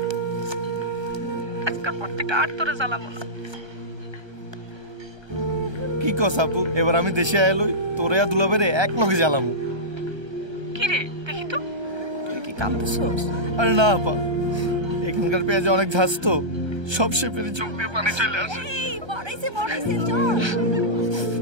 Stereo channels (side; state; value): left; late; 1.3 ms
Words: আজকাল পর থেকে আর তোরে জ্বালাবো না। কি কস আপু, এবার আমি দেশে আইলই তোরে আর দুলাবেরে এক লগে জ্বালামু। কি রে দেখি তো, তুই কি কাঁদতেছস? আরে না আপা, এখানকার পেঁয়াজে অনেক ঝাঁজ তো, সব শেপেরই চোখ দিয়ে পানি চলে আসে। বড়াইছে চল।